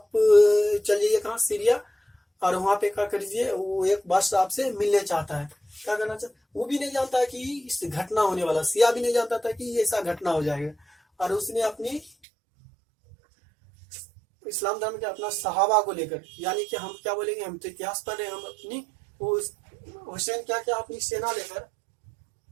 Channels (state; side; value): drops out; left; at 12.1 s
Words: चल जाइए कहाँ? सीरिया, और वहां पे क्या करिए, वो एक बादशाह आपसे मिलने चाहता है। क्या करना चाहता? वो भी नहीं जानता है कि इस घटना होने वाला, सिया भी नहीं जानता था कि ऐसा घटना हो जाएगा। और उसने अपनी इस्लाम धर्म के अपना सहाबा को लेकर, यानी कि हम क्या बोलेंगे, हम तो इतिहास पढ़ रहे हैं, हम अपनी वो हुसैन क्या क्या अपनी सेना लेकर,